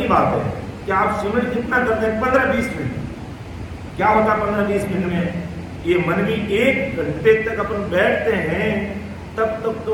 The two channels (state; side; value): identical; both; correlation 1.00